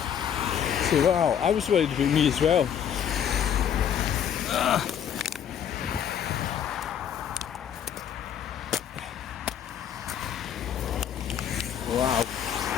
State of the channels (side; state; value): right; quieter; 8.9 dB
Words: So wow, I was worried about me as well. Wow.